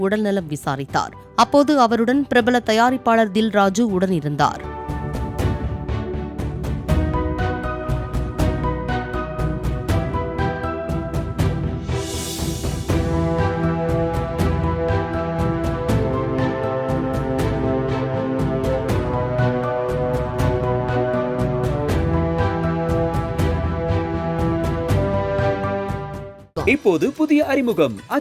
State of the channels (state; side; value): identical; both; correlation 1.00